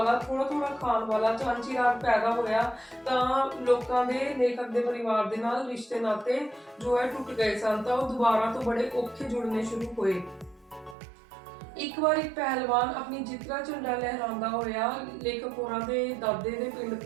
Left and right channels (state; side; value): drops out; left; at 11.0 s